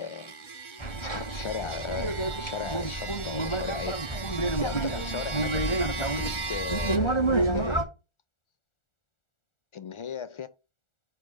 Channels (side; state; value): right; late; 1.4 ms